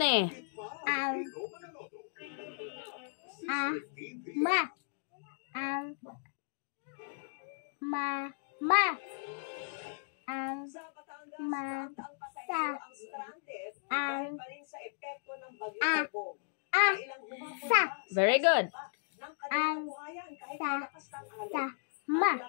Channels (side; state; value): right; silent; digital silence